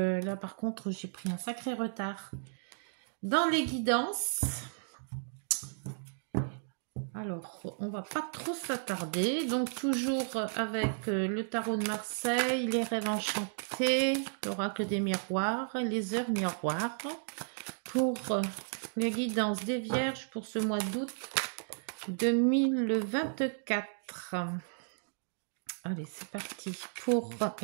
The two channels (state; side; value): silent; left; digital silence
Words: par contre, j'ai pris un sacré retard dans les guidances. Alors, on va pas trop s'attarder. Donc toujours avec le tarot de Marseille, les rêves enchantés, l'oracle des miroirs, les heures miroirs. Pour les guidances des Vierges pour ce mois d'août 2024. Allez, c'est parti pour